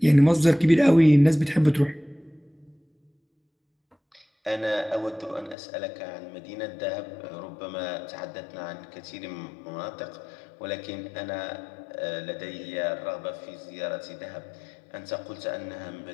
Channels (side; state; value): right; drops out; at 5.6 s